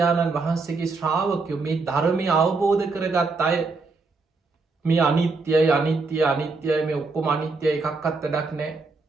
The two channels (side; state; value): left; quieter; 3.9 dB